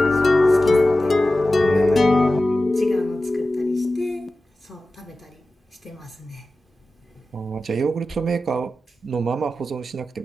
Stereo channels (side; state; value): both; normal; correlation 0.94